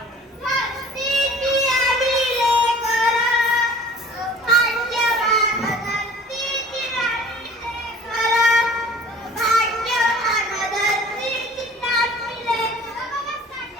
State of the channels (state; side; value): normal; both; correlation 0.48